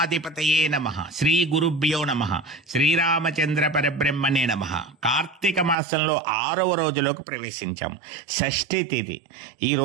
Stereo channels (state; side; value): drops out; left; at 5.8 s